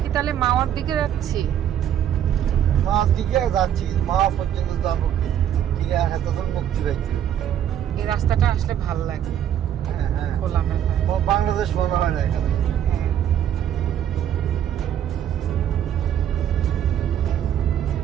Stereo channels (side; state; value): left; quieter; 10.1 dB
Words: কি তাহলে মাওয়ার দিকে যাচ্ছি? মার দিকে যাচ্ছি, মা পর্যন্ত যাবো ঠিক আছে, তখন মুক্তি পাইছি। এই রাস্তাটা আসলে ভালো লাগে, হ্যাঁ হ্যাঁ, খোলামেলা। ও বাংলাদেশ মনে হয় না এখানে। হ্যাঁ।